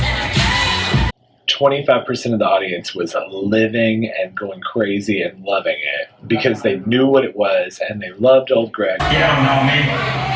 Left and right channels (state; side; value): identical; both; correlation 1.00